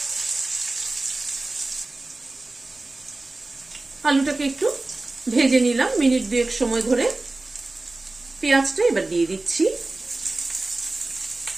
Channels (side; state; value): left; quieter; 3.1 dB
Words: আলুটাকে একটু ভেজে নিলাম মিনিট 2 সময় ধরে। পেঁয়াজটা এবার দিয়ে দিচ্ছি।